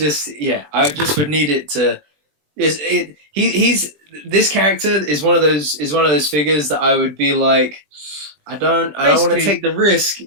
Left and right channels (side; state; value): left; late; 20 ms